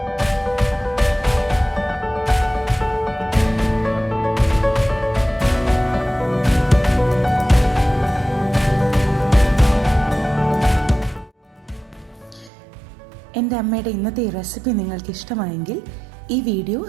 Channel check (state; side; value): drops out; left; at 12.5 s